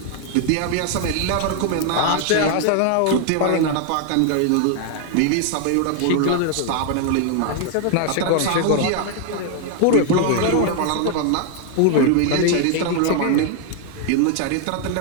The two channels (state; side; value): different; both; correlation 0.00